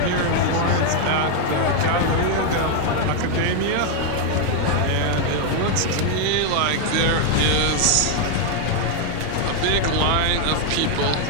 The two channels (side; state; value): both; different; correlation 0.00